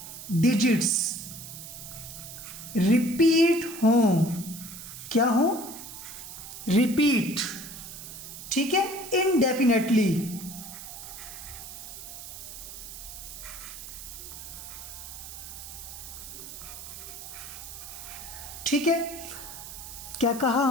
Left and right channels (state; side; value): noise; right; hiss, 11 dB below the sound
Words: डिजिट्स रिपीट हों। क्या हो? रिपीट। ठीक है, इनडेफिनेटली, ठीक है, क्या कहा